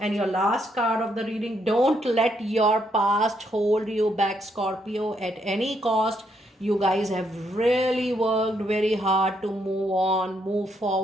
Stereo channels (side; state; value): both; normal; correlation 0.75